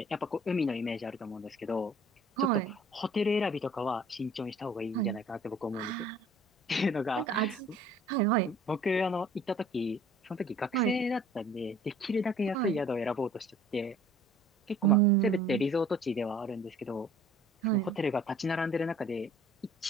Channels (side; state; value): both; normal; correlation 0.52